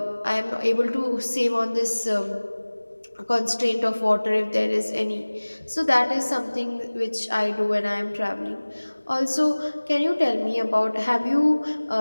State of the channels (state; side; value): inverted; both; correlation -1.00